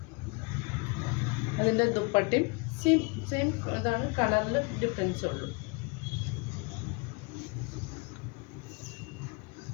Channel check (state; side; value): quieter; right; 30.3 dB